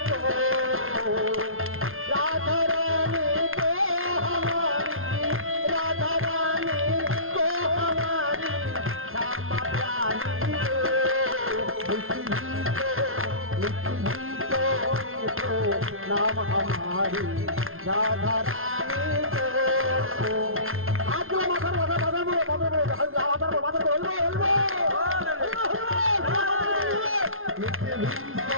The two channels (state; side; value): late; left; 0.61 ms